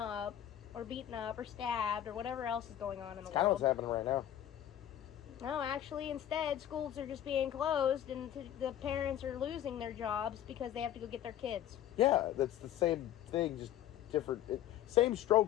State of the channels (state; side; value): quieter; right; 11.4 dB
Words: or beaten up or stabbed or whatever else is going on in the world. That's kind of what's happening right now. No, actually, instead, schools are just being closed, and the parents are losing their jobs because they have to go get their kids. Yeah, that's the same thing, just different. Same